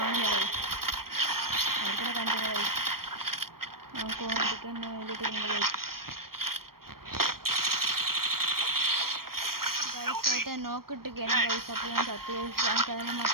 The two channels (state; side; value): late; left; 0.93 ms